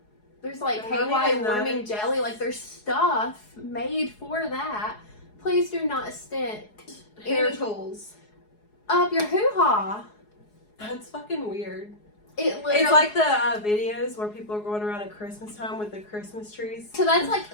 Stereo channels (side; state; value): right; late; 4.8 ms